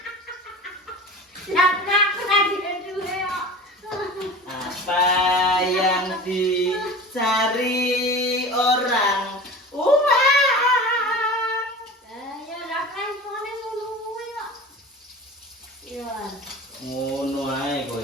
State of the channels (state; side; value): normal; both; correlation 0.36